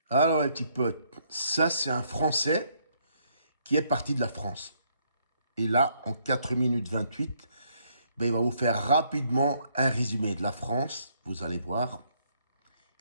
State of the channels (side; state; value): both; inverted; correlation -0.70